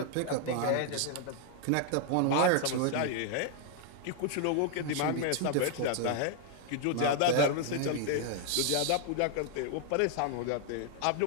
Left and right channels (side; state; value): both; different; correlation 0.00